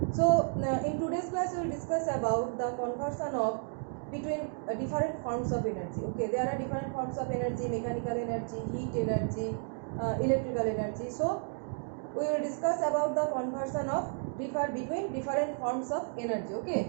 So in today's class we will discuss about the conversion of between different forms of energy. Okay, there are different forms of energy: mechanical energy, heat energy, electrical energy. So we will discuss about the conversion of between different forms of energy.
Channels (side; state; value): left; silent; 56 dB below the other